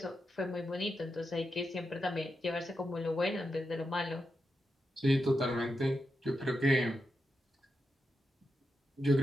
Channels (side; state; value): both; normal; correlation 0.87